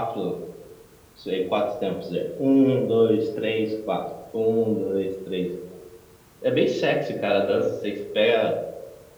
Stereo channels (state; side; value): identical; both; correlation 1.00